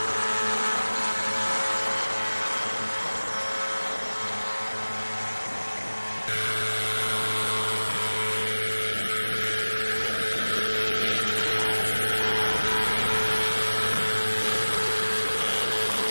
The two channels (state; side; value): inverted; both; correlation -1.00